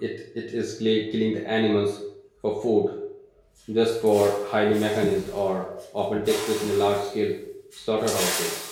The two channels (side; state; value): both; identical; correlation 1.00